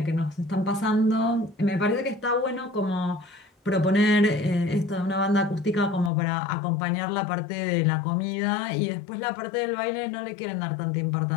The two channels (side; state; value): right; drops out; at 6.1 s